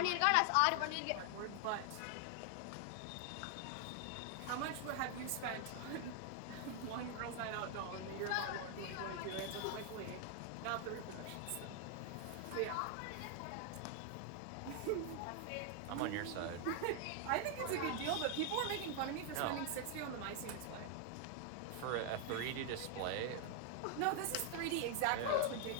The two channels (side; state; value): both; different; correlation 0.00